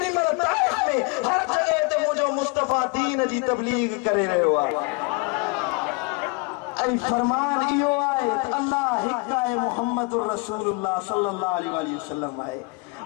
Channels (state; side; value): quieter; right; 29.0 dB